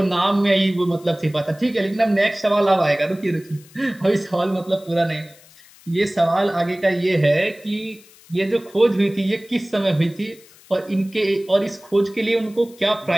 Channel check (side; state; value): left; noise; hiss, 25 dB below the sound